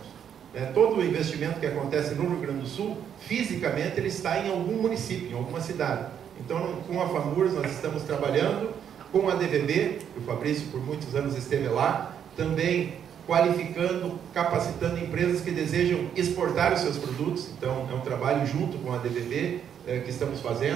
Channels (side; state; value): left; quieter; 8.7 dB